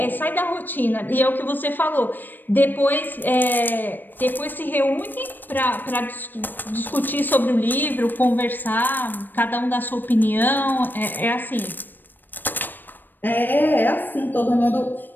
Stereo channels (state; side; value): late; right; 0.092 ms